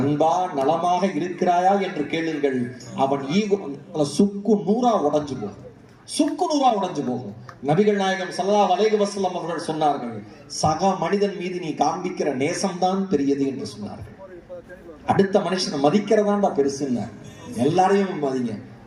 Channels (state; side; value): identical; both; correlation 1.00